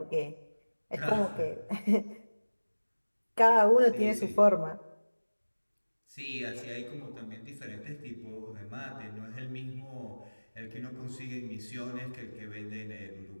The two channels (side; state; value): both; inverted; correlation -1.00